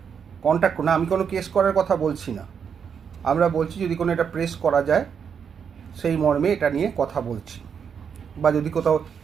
কন্ট্যাক্ট করুন। আমি কোনো কেস করার কথা বলছি না, আমরা বলছি যদি কোনো এটা প্রেস করা যায় সেই মর্মে এটা নিয়ে কথা বলছি। বা যদি কোথাও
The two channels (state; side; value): quieter; left; 7.1 dB